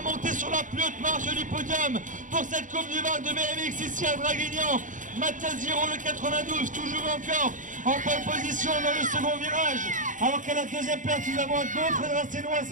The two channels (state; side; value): late; left; 0.37 ms